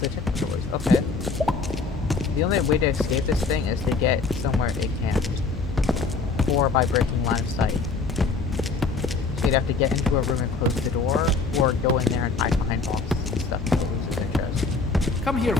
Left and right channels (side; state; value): right; quieter; 4.3 dB